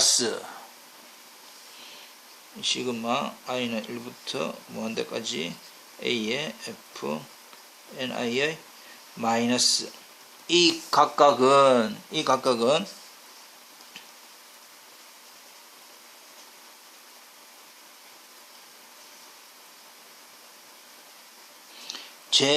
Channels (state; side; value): identical; both; correlation 1.00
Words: 시그마 i는 1부터 무한대까지 a의 fni의 마이너스 이 각각은